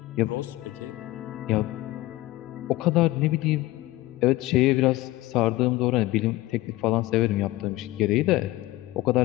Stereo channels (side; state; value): right; quieter; 18.0 dB